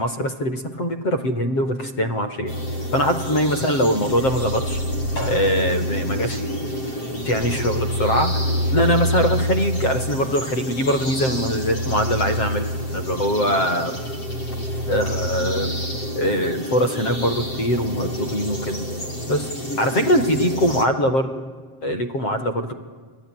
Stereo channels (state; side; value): late; right; 7.6 ms